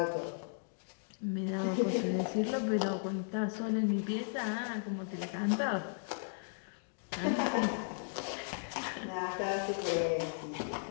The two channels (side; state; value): right; silent; digital silence